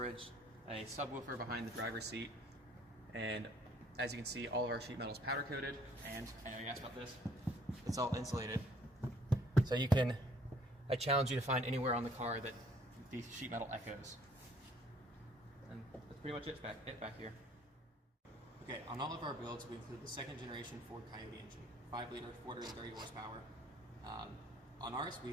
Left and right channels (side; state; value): both; normal; correlation 0.60